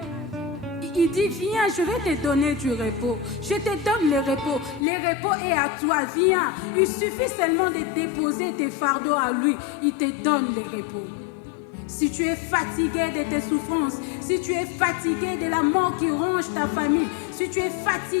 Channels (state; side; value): drops out; right; at 4.9 s